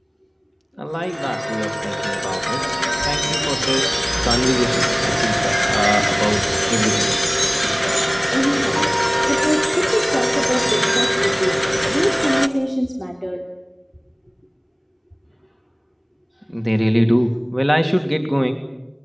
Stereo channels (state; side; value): identical; both; correlation 1.00